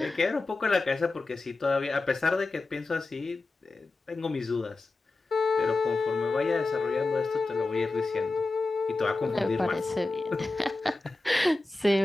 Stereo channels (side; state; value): right; quieter; 3.2 dB